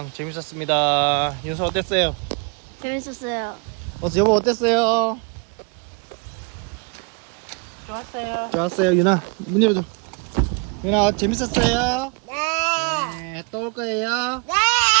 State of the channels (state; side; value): quieter; left; 33.3 dB